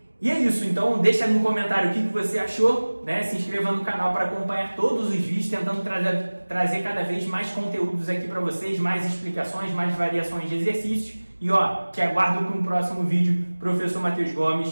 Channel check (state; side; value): inverted; both; correlation -1.00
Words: E é isso, então deixa no comentário o que você achou, né? Se inscreva no canal para acompanhar todos os vídeos, tentando trazer cada vez mais conteúdos aqui para vocês, mais explicações, mais variações de exercícios. E ó, te aguardo para um próximo vídeo. Professor Matheus